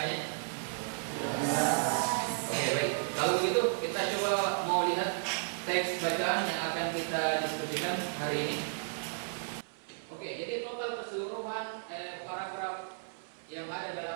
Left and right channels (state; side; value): silent; left; 55 dB below the other